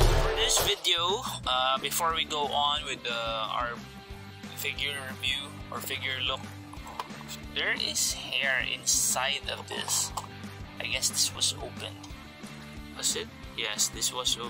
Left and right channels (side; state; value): both; identical; correlation 1.00